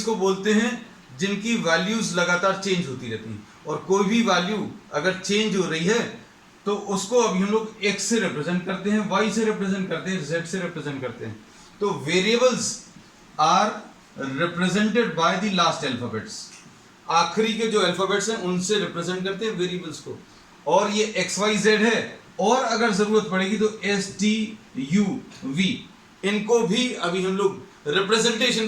को बोलते हैं जिनकी वैल्यूज लगातार चेंज होती रहती हैं, और कोई भी वैल्यू अगर चेंज हो रही है तो उसको अभी हम लोग x से रिप्रेजेंट करते हैं, y से रिप्रेजेंट करते हैं, z से रिप्रेजेंट करते हैं। तो variables are represented by the last alphabets. आखिरी के जो अल्फाबेट्स हैं उनसे रिप्रेजेंट करते हैं वेरिएबल्स को, और ये एक्स वाई जेड है, और अगर जरूरत पड़ेगी तो एस टी यू वी, इनको भी अभी हम लोग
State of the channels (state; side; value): identical; both; correlation 1.00